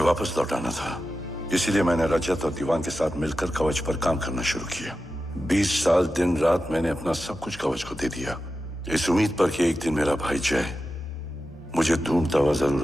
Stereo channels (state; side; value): normal; both; correlation 0.92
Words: वापस लौटाना था। इसीलिए मैंने रजत और दीवान के साथ मिलकर कवच पर काम करना शुरू किया। 20 साल दिन रात मैंने अपना सब कुछ कवच को दे दिया, इस उम्मीद पर कि एक दिन मेरा भाई जय मुझे ढूंढता हुआ जरूर